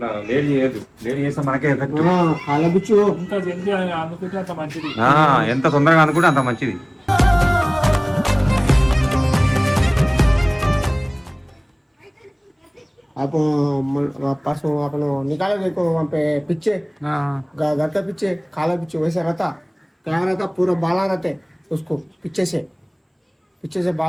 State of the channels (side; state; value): both; identical; correlation 1.00